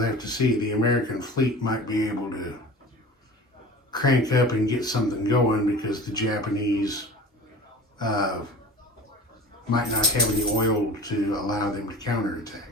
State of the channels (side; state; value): both; normal; correlation 0.38